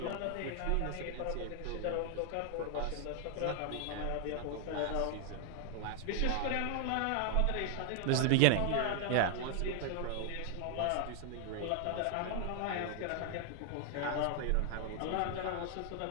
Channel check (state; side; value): different; both; correlation 0.00